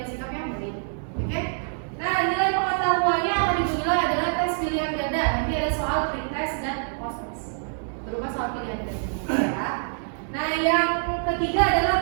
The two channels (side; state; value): left; silent; digital silence